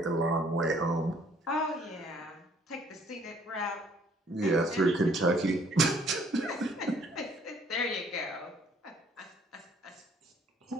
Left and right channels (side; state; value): both; normal; correlation 0.61